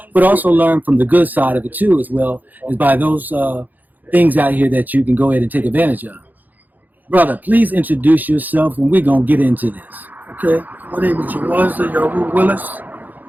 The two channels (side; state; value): left; late; 0.084 ms